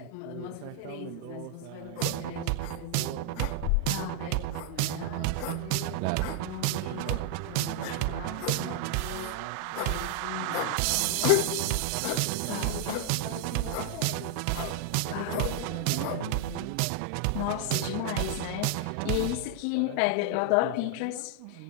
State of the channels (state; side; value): different; both; correlation 0.00